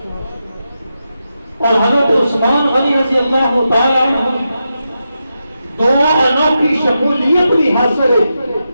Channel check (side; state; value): both; inverted; correlation -0.88